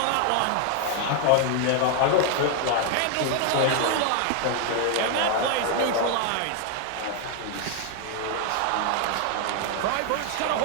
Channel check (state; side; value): different; both; correlation 0.01